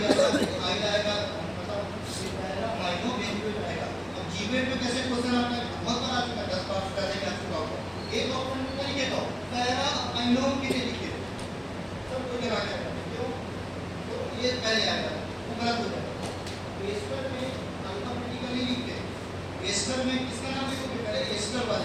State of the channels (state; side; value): identical; both; correlation 1.00